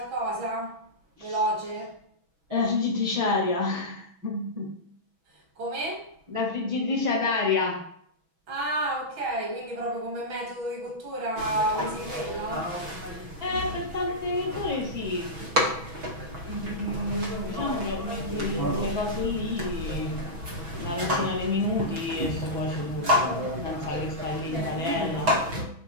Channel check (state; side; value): late; left; 6.1 ms